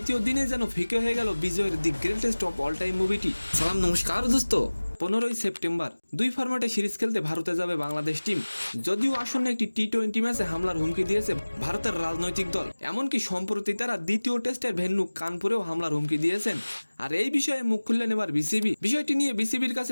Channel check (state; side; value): inverted; both; correlation -1.00